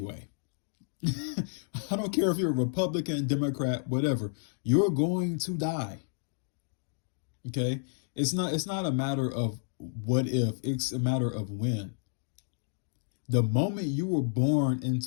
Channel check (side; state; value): right; silent; digital silence